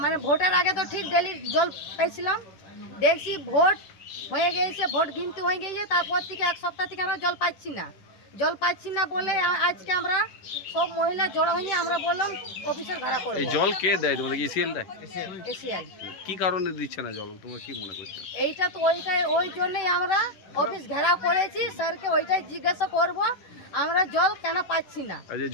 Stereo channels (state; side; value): late; right; 11 ms